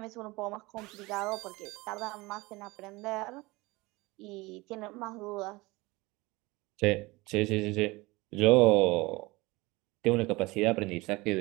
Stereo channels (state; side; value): quieter; left; 22.5 dB